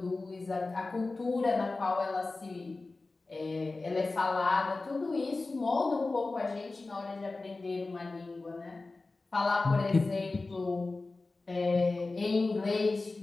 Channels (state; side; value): quieter; right; 3.5 dB